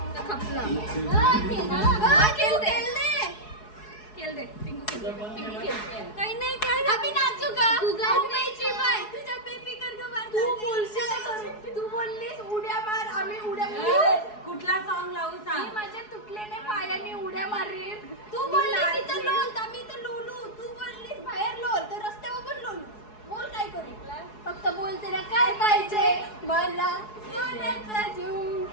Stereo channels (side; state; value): right; late; 4.7 ms